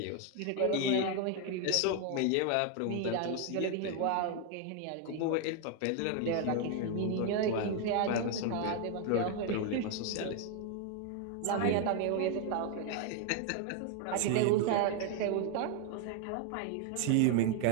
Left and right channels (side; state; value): both; different; correlation 0.01